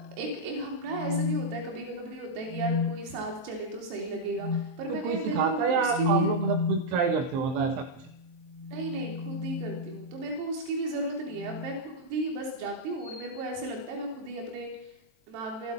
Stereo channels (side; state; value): left; late; 23 ms